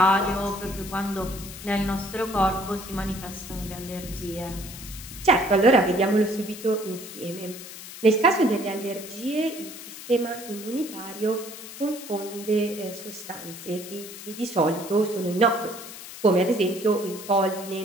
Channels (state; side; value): noise; left; hiss, 13 dB below the sound